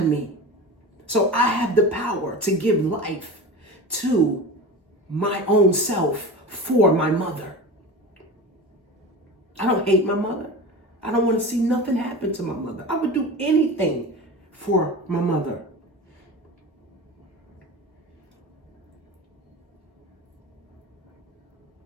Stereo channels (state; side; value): normal; both; correlation 0.30